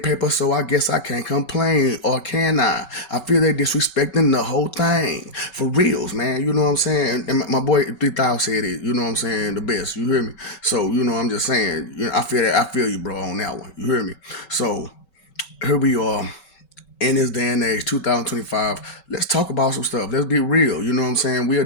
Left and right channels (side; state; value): right; late; 5.3 ms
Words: so I guess I can't complain. Or can I? I feel they disrespecting the whole thing. For reals, man. You know what I'm saying? And my boy 3000 said it. You know what I'm saying? The best. You hear me? So, I'm just saying, I feel that. I feel you, bro, on that one. You hear me? So, here we are in this day and age, 2025, let's talk about some stuff. Let's be real. You know what I'm saying? We